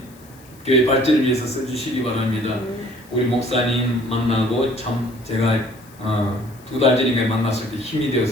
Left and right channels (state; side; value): noise; left; hiss, 26 dB below the sound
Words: 교회 발전을 위해서 써주시기 바랍니다. 우리 목사님 만나고 참 제가 2달 전인가 만났을 때 힘이